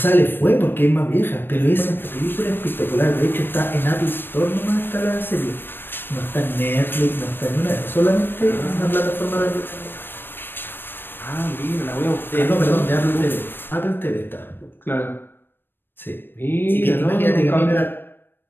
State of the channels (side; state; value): right; late; 0.097 ms